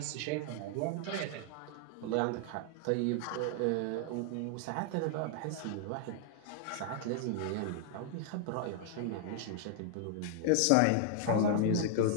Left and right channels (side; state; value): both; different; correlation 0.00